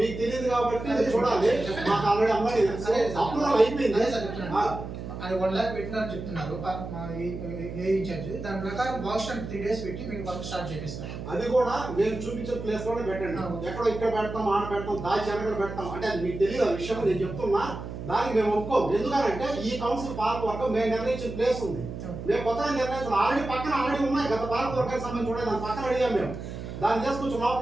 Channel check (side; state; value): right; noise; hum, 8 dB below the sound